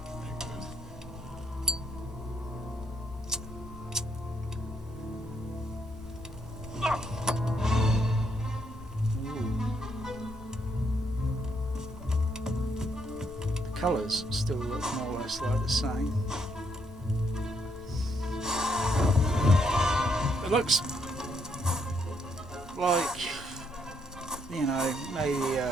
The colours still look more or less like the same. It looks like, maybe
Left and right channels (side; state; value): both; normal; correlation 0.74